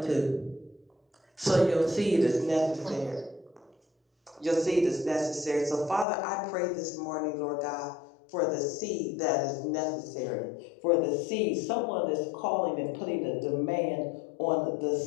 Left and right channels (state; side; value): drops out; right; at 6.1 s